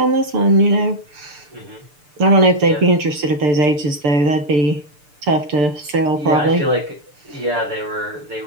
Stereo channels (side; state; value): left; late; 6.7 ms